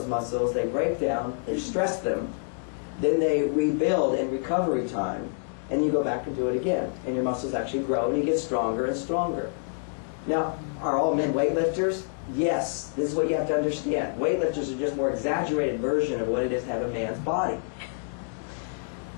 muscles, they break down, they stress them, then they rebuild in recovery time, and you go back and do it again. And your muscles actually grow, and you get stronger and stronger. Now, are all men weightlifters? Yes. This is what you have to understand. Weightlifters are just a more exaggerated version of what it is to have a man's body.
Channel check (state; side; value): silent; right; digital silence